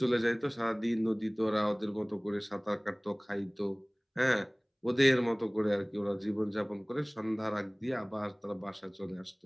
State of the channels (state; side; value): identical; both; correlation 1.00